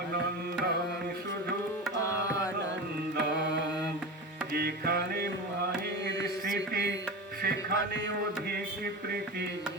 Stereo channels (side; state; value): both; normal; correlation 0.26